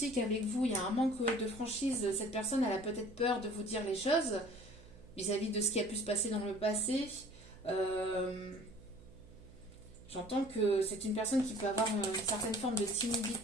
avec vous. Il y a un manque de franchise. Cette personne, elle a peut-être peur de vous dire les choses vis-à-vis de ce qui a pu se passer dans le passé. J'entends que c'est une personne qui peut avoir une certaine forme de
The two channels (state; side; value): noise; right; hum, 21 dB below the sound